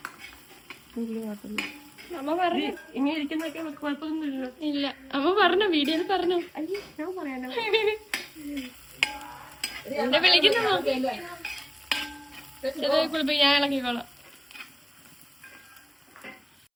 അമ്മ പറഞ്ഞു ഇങ്ങനെ ഇരിക്കുന്നൊക്കെ കുഴപ്പമൊന്നുമില്ല. ഇല്ല അമ്മ പറഞ്ഞു, വീഡിയോയിൽ പറഞ്ഞു. ഞാൻ പറയാനോ എന്നെ വിളിക്കുന്നു. ഞാൻ ഇളക്കിക്കോളാം.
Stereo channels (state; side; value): identical; both; correlation 1.00